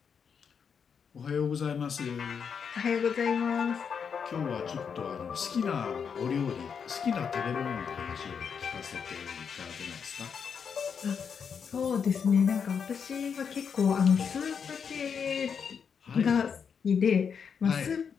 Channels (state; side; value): quieter; right; 6.7 dB